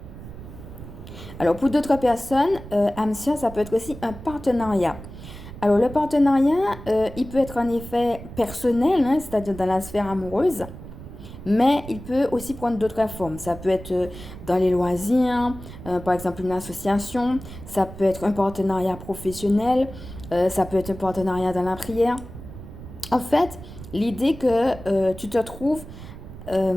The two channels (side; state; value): right; noise; rumble, 14 dB below the sound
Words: Alors, pour d'autres personnes, âme sœur, ça peut être aussi un partenariat. Alors, le partenariat, il peut être en effet personnel, hein, c'est-à-dire dans la sphère amoureuse, mais il peut aussi prendre d'autres formes. Ça peut être dans les loisirs, par exemple une association, ça peut être un partenariat professionnel, ça peut être un partenariat dans la prière. En fait, l'idée que tu te trouves